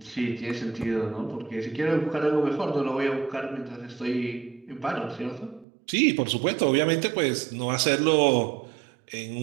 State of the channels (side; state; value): left; drops out; at 5.7 s